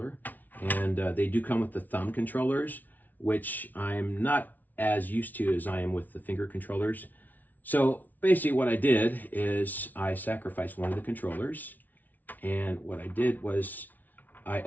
And they do come with the thumb controllers, which I'm not as used to as I am with the finger controllers. So basically what I did is I sacrificed one of the controllers. And what I did was I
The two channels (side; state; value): right; late; 0.080 ms